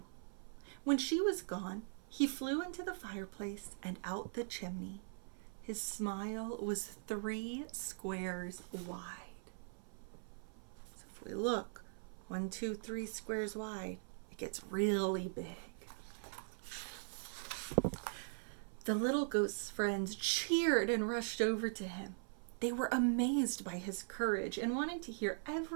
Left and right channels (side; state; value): left; silent; 50 dB below the other